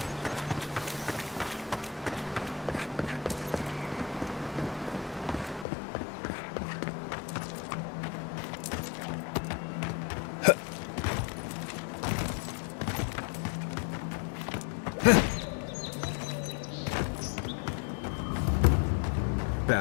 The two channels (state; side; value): drops out; right; at 5.7 s